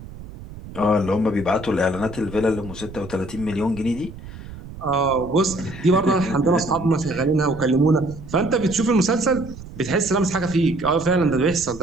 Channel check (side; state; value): right; noise; rumble, 14 dB below the sound